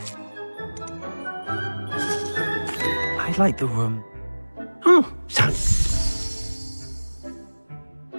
I'd like the room... Oh, sounds...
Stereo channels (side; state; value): both; inverted; correlation -1.00